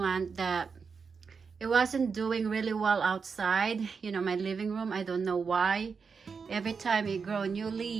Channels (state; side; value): quieter; left; 5.5 dB